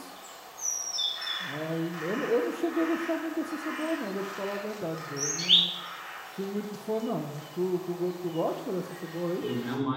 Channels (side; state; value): both; identical; correlation 1.00